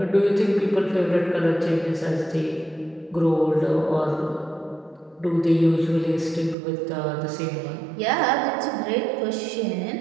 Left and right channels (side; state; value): left; drops out; at 6.6 s